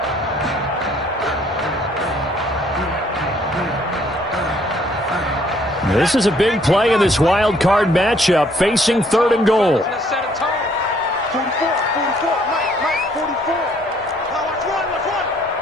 This is a big play in this wild card matchup, facing 3rd and goal.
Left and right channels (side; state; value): both; normal; correlation 0.63